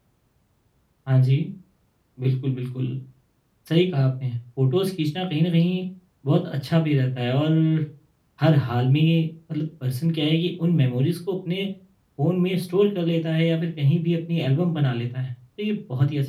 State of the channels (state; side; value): identical; both; correlation 1.00